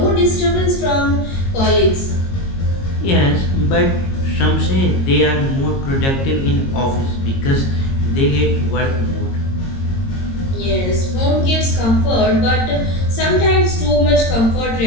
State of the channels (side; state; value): right; late; 22 ms